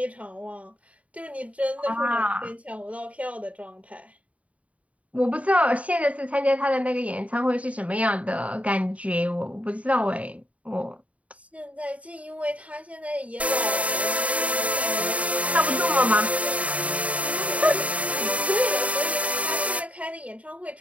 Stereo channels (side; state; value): left; late; 0.067 ms